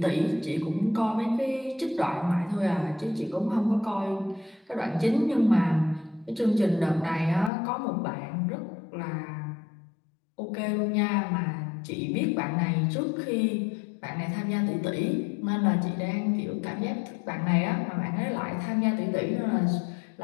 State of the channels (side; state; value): right; drops out; at 7.5 s